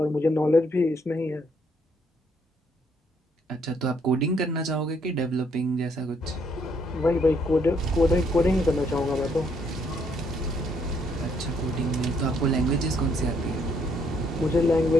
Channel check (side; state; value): both; normal; correlation 0.70